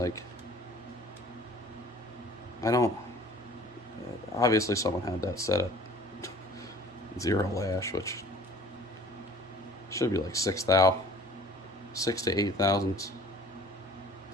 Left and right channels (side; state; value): both; normal; correlation 0.49